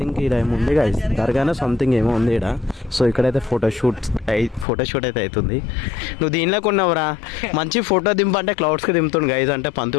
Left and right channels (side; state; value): right; drops out; at 4.7 s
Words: ఇలా ఏమో ఉంది గైజ్, దర్గానే సంథింగ్ ఏమో ఉంది ఇక్కడ. సో ఇక్కడైతే ఫోటోషూట్ అయితే అవుతుంది. నువ్వు దీనిలోకి ఉన్నావురా, మంచి ఫోటో దింపంటే క్లౌడ్స్కి దింపుతుంది గైజ్. అంటే